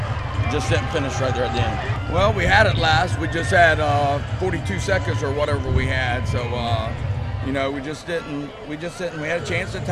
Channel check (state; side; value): identical; both; correlation 1.00